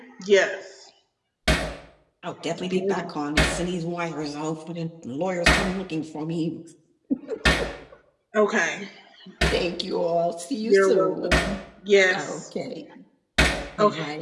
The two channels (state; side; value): identical; both; correlation 1.00